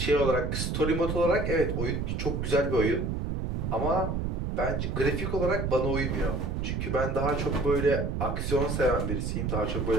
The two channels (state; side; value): noise; right; rumble, 1 dB below the sound